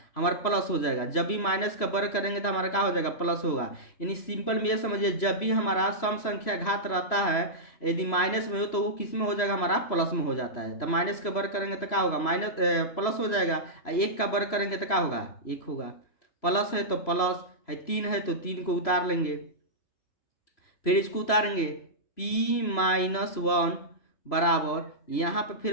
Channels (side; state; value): right; late; 3.0 ms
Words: हमारा प्लस हो जाएगा, जब भी माइनस का वर्ग करेंगे तो हमारा क्या हो जाएगा, प्लस होगा। यानी सिंपल में ये समझिए, जब भी हमारा सम संख्या घात रहता है, यदि माइनस में हो तो वो किस में हो जाएगा, हमारा प्लस में हो जाता है, तो माइनस का वर्ग करेंगे तो क्या होगा, माइनस प्लस हो जाएगा, 1 का वर्ग करेंगे तो क्या होगा, 1 होगा, प्लस है तो प्लस है, 3 है तो 3 को उतार लेंगे, फिर इसको उतारेंगे p-1 बराबर, यहाँ पे फिर